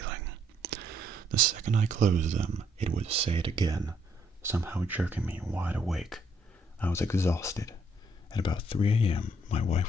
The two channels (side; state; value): both; normal; correlation 0.69